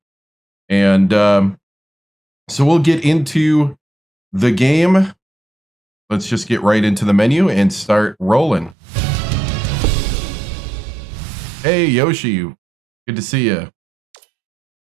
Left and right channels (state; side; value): drops out; left; at 8.8 s